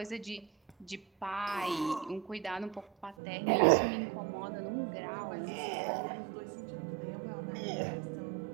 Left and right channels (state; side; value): drops out; left; at 3.2 s